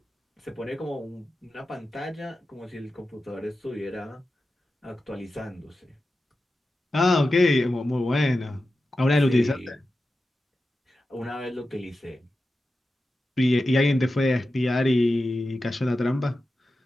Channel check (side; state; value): both; normal; correlation 0.92